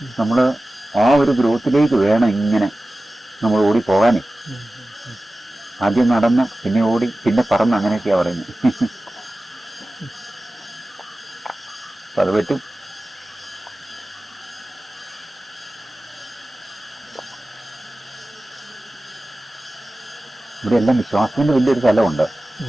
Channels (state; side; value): normal; both; correlation 0.96